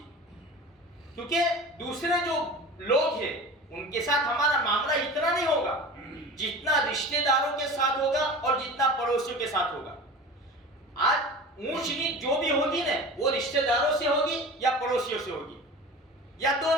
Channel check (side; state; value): both; normal; correlation 0.35